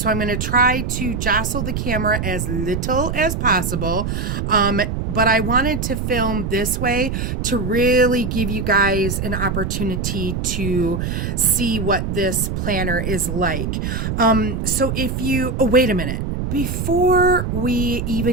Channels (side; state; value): right; noise; rumble, 2 dB below the sound